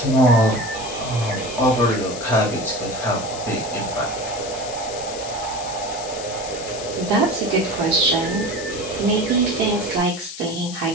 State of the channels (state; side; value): noise; left; hiss, 10 dB below the sound